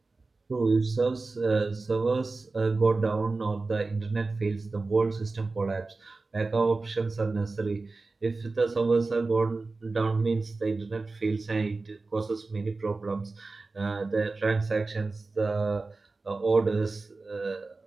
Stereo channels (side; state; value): left; quieter; 3.6 dB